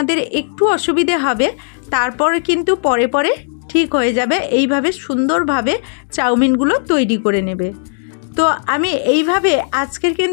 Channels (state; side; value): silent; right; digital silence